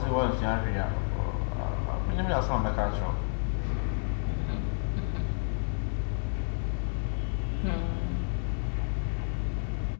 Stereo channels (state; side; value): silent; right; 58 dB below the other